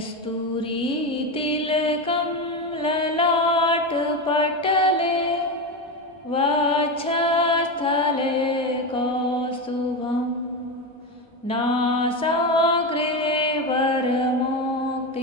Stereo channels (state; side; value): normal; both; correlation 0.17